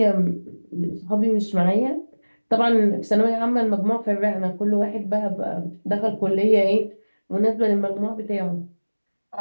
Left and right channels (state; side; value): inverted; both; correlation -1.00